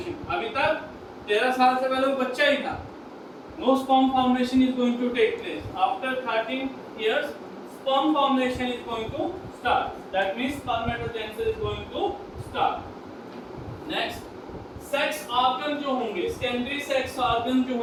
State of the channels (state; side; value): identical; both; correlation 1.00